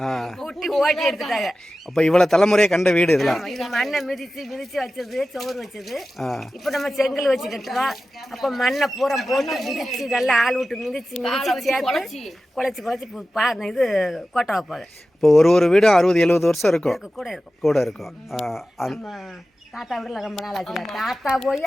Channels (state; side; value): normal; both; correlation 0.94